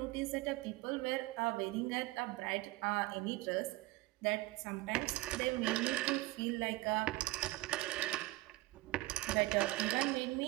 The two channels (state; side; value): quieter; left; 19.6 dB